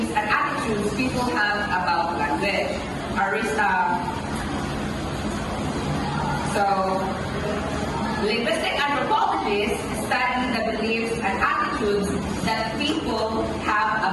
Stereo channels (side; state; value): both; identical; correlation 1.00